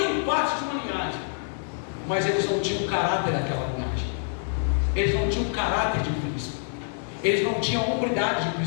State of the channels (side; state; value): right; silent; 57 dB below the other